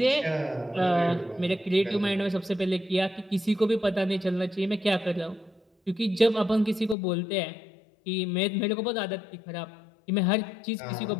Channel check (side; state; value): right; drops out; at 7.0 s